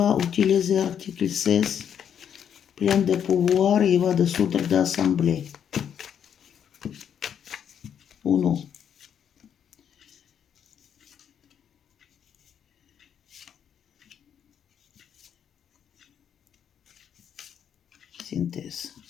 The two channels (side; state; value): right; quieter; 8.6 dB